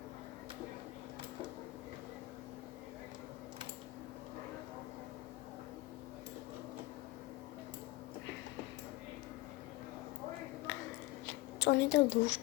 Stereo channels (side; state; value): right; quieter; 20.1 dB